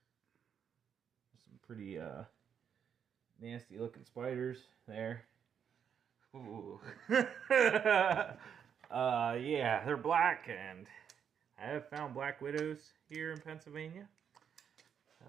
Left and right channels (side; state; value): left; quieter; 7.9 dB